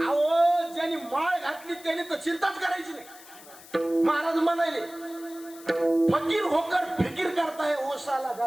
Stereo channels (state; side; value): noise; left; hiss, 20 dB below the sound